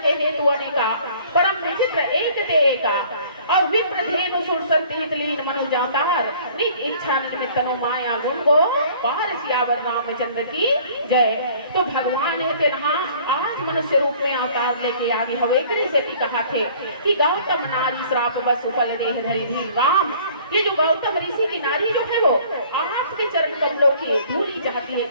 हेतु अनेका परम विचित्र एक ते एका और विप्र धेनु सुर संति हितलीन मनुजातार निज इच्छा निमित्त नो माया गुण गो पार सियावर रामचंद्र की जय। तो भगवान है ना आज मनुष्य रूप में अवतार लेके आगे हवे से कहा थे कि गौतम नारी श्राप बस फल देह धरि धीर राम। ये जो गौतम ऋषि की नारी जो है वो आपके चरण कमलों की धूली चाहती है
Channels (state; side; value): inverted; both; correlation -0.53